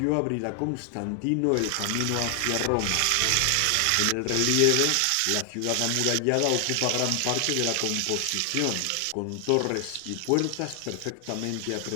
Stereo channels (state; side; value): different; both; correlation 0.00